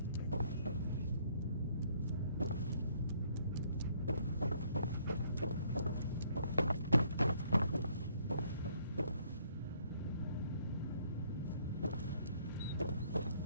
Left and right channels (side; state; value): both; inverted; correlation -0.65